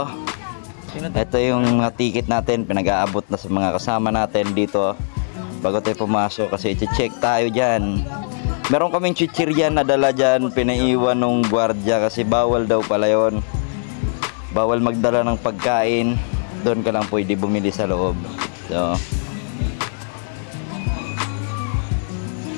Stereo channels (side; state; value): right; silent; digital silence